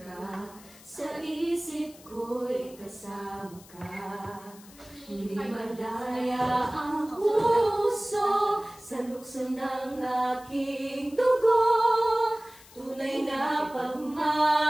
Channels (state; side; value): noise; left; hiss, 22 dB below the sound